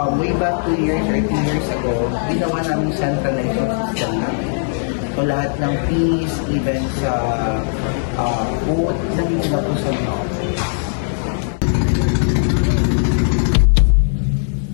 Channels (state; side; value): silent; right; digital silence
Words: way back 2 years or 3 years ago, ginawa namin centralized system namin. So lahat ng fees, even sa boat, nandito na po sa mga office.